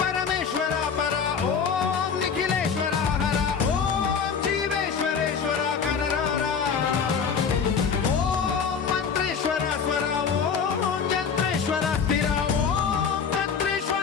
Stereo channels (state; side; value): quieter; right; 6.3 dB